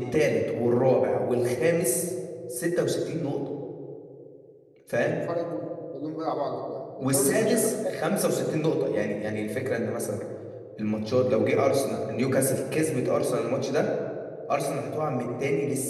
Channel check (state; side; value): identical; both; correlation 1.00